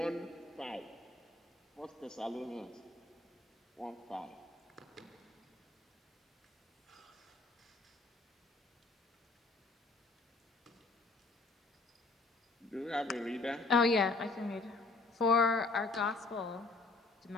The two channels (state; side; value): quieter; right; 3.6 dB